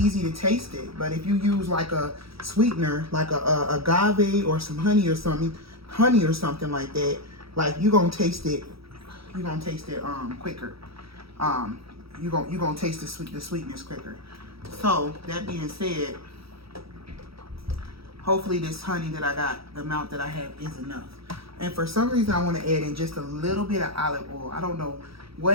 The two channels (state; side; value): late; left; 0.76 ms